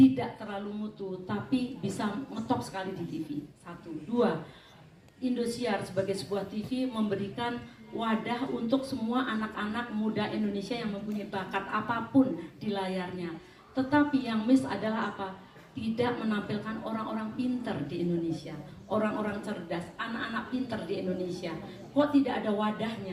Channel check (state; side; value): identical; both; correlation 1.00